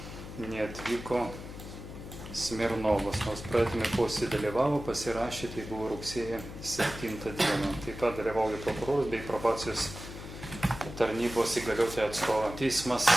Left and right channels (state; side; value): noise; left; hum, 11 dB below the sound